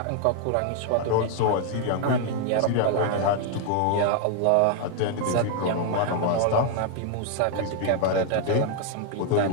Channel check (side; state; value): both; different; correlation 0.00